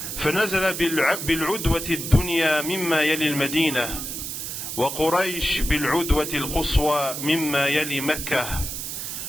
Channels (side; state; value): right; noise; hiss, 6 dB below the sound